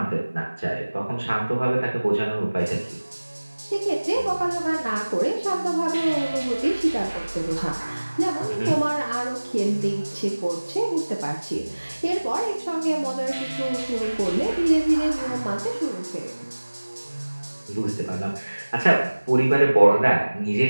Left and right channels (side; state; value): both; inverted; correlation -1.00